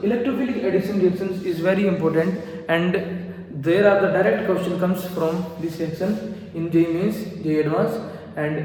electrophilic addition reactions is very important, and there are the direct question comes from this reaction in JEE Mains, JEE Advanced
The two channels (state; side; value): identical; both; correlation 1.00